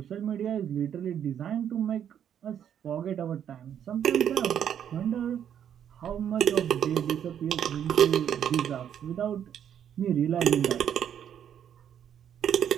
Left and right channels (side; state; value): left; quieter; 9.3 dB